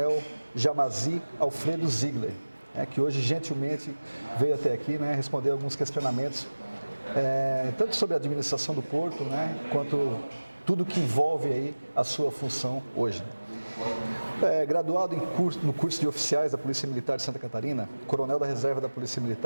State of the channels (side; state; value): both; inverted; correlation -1.00